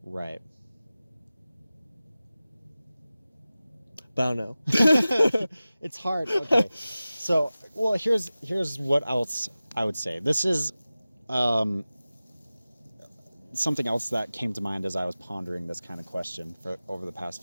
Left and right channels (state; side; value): inverted; both; correlation -0.97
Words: Right. But I don't know. It's hard. Okay. So, well, here's what else I would say. This is something else that came to mind as I was pondering this kind of question for over the